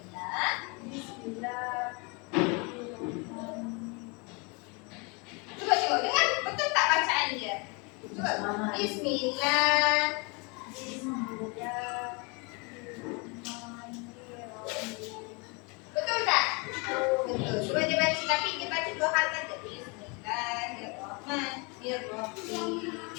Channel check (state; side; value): quieter; right; 30.7 dB